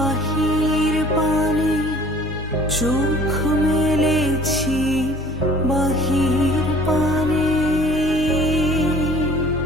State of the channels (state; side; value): normal; both; correlation 0.49